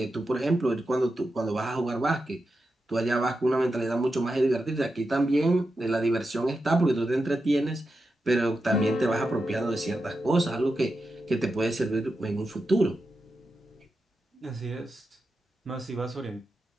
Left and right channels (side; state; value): both; normal; correlation 0.89